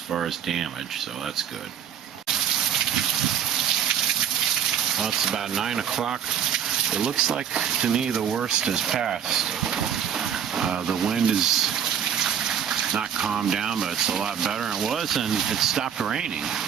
as damage, so that's good. Well, it's about 9 o'clock. It looks like, to me, the worst has passed. The wind is not calmed down, but it's a lot better than it was, and it stopped raining,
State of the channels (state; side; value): quieter; left; 8.6 dB